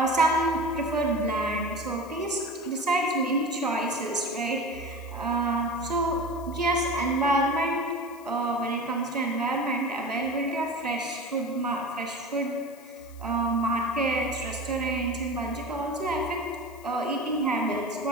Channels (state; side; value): noise; left; hiss, 24 dB below the sound